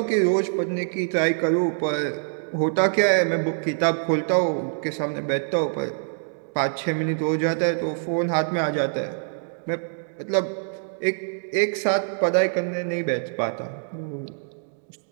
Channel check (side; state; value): left; silent; digital silence